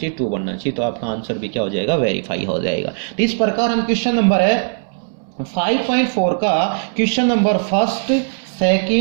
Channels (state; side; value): silent; left; 67 dB below the other